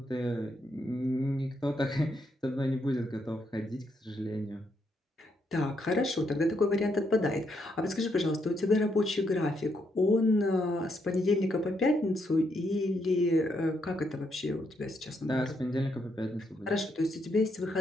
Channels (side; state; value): both; normal; correlation 0.77